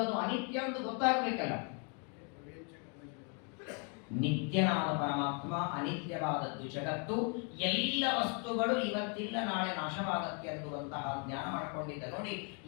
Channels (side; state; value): right; quieter; 37.9 dB